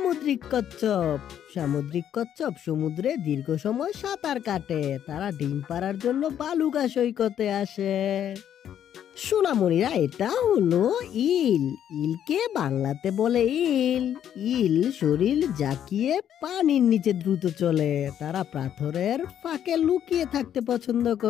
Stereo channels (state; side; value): quieter; right; 9.9 dB